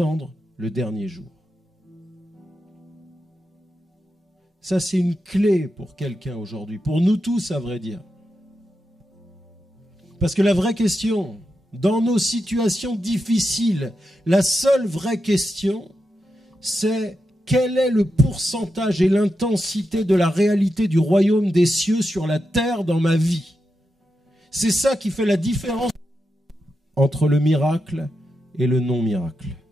le dernier jour? Ça, c'est une clé pour quelqu'un aujourd'hui, pour nous tous, à vrai dire. Parce que la vraie question, dans nos situations difficiles, la seule vraie question, c'est quel est le pourcentage et l'intensité de la réalité du royaume des cieux sur la terre dans ma vie. C'est ça qui fait la différence entre le miracle et le non-miracle.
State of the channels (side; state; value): both; normal; correlation 0.87